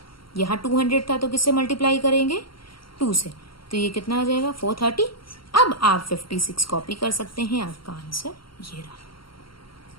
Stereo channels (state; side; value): late; right; 0.74 ms